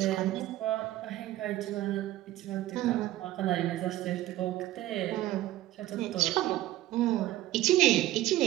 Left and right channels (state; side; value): quieter; left; 15.3 dB